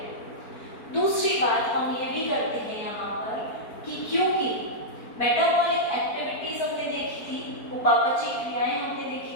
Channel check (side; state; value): right; late; 4.4 ms